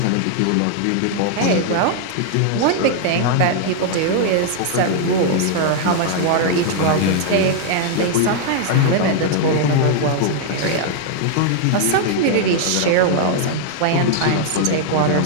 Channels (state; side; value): different; both; correlation 0.00